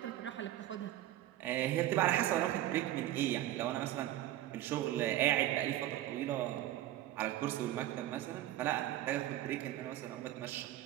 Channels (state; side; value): quieter; left; 14.1 dB